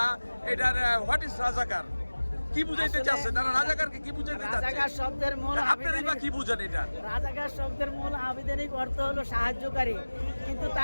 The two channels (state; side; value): inverted; both; correlation -1.00